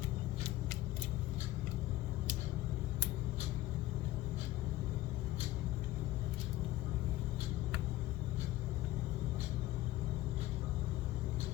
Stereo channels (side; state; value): right; quieter; 15.8 dB